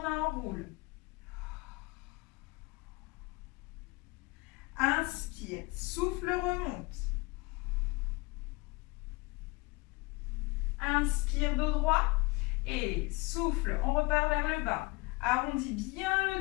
enroule. Inspire, souffle, remonte. Inspire, dos droit et souffle. On repart vers le bas. Arrondis bien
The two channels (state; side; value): quieter; right; 25.2 dB